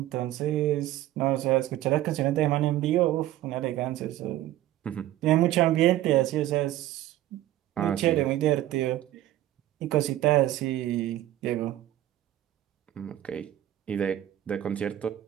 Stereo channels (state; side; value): quieter; left; 13.8 dB